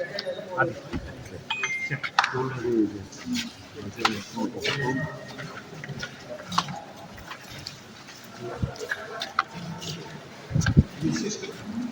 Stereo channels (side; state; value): both; identical; correlation 1.00